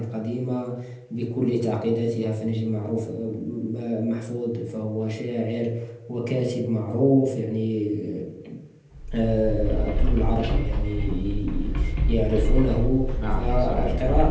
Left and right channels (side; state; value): both; identical; correlation 1.00